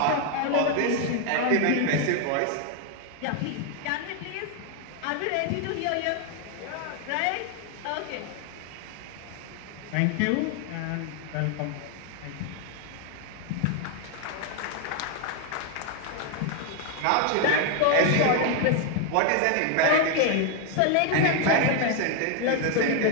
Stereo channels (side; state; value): both; different; correlation 0.00